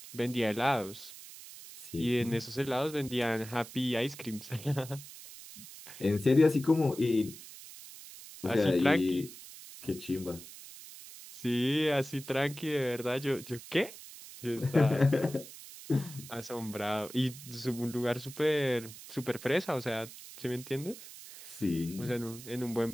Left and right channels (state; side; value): noise; right; hiss, 15 dB below the sound